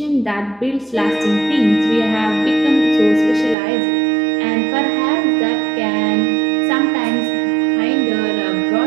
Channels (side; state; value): left; drops out; at 3.6 s